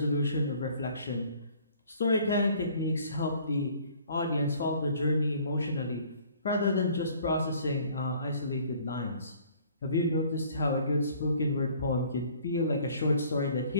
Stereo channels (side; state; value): both; inverted; correlation -0.56